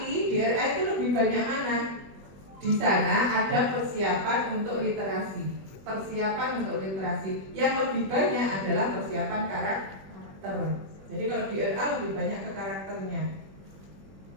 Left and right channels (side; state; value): left; late; 21 ms